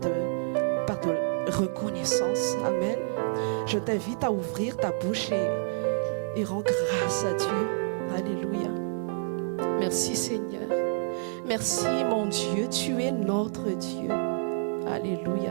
reconnaissance. Amen. Je t'invite à ouvrir ta bouche et rends grâce à Dieu. Alléluia. Merci Seigneur. Merci mon Dieu, tu es notre Dieu. Alléluia.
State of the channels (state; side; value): silent; left; 59 dB below the other